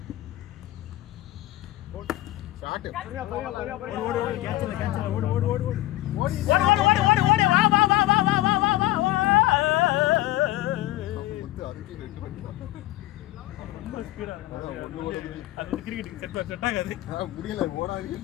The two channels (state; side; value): quieter; right; 16.4 dB